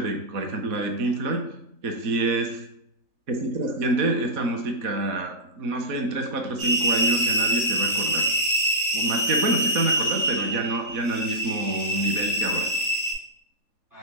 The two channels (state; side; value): late; left; 3.8 ms